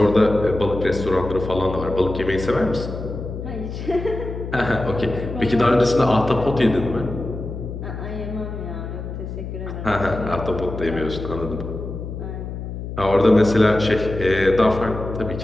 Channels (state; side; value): noise; left; hum, 7 dB below the sound